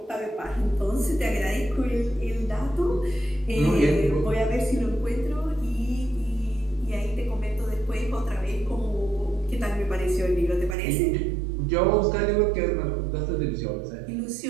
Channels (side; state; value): left; drops out; at 10.8 s